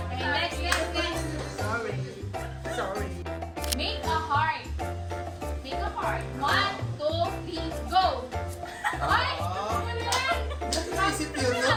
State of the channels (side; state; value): both; identical; correlation 1.00